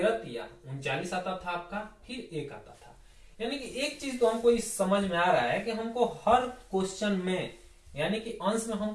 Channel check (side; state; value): both; identical; correlation 1.00